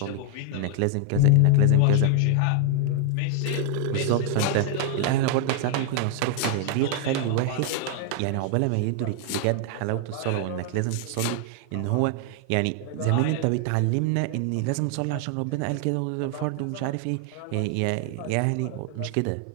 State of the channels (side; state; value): both; different; correlation 0.00